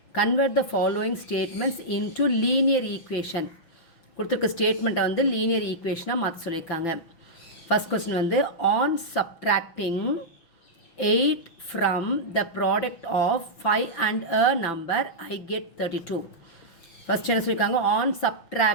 convert the following statements into linear equation. கொடுத்திருக்க ஸ்டேட்மெண்ட்டை வந்து linear equationஆ மாற்ற சொல்லியிருக்காங்க. First question வந்து on subtracting 8 from the product of 5 and a number I get 32. First என்ன சொல்லியிருக்காங்க on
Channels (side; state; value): right; late; 5.9 ms